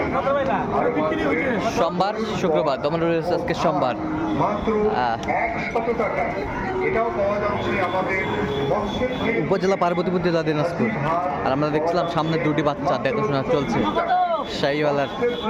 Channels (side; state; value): both; identical; correlation 1.00